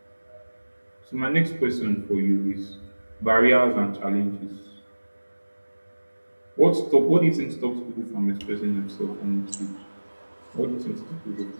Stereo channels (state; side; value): inverted; both; correlation -1.00